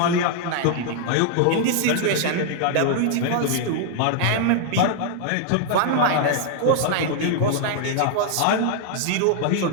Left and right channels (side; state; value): both; different; correlation -0.01